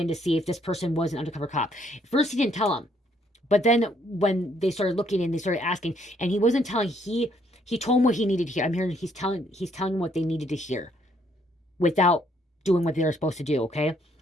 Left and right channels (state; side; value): normal; both; correlation 0.69